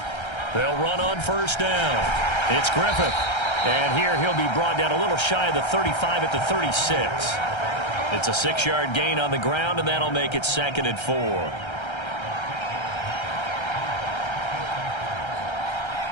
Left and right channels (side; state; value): right; late; 1.3 ms